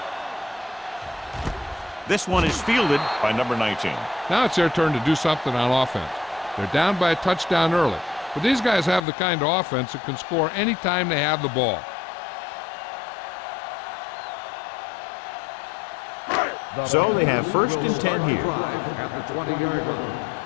This one is fielded by number 19. Now it's their turn to do something on offense. They're down by a touchdown early, but these guys have the kind of offense that can score any time they have the ball. So they have first and 10 here. At the 20-yard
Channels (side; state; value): right; drops out; at 9.0 s